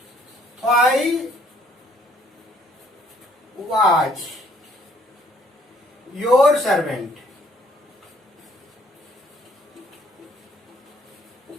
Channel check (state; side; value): normal; both; correlation 0.63